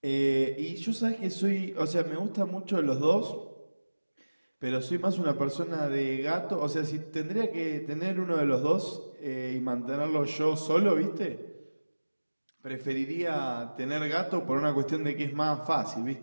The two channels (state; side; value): inverted; both; correlation -1.00